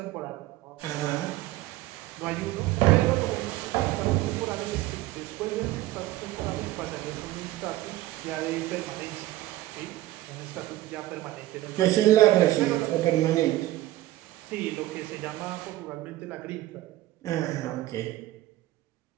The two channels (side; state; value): left; quieter; 16.2 dB